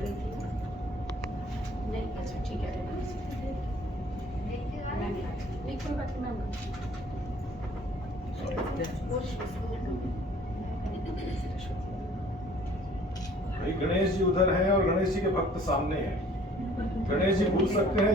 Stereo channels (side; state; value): both; normal; correlation 0.54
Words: थी नहीं? अच्छा ठीक है मैम नहीं कोई बात नहीं मैम। भाई गणेश जी उधर हैं और गणेश जी के भक्त सामने हैं। गणेश जी भूल सकते हैं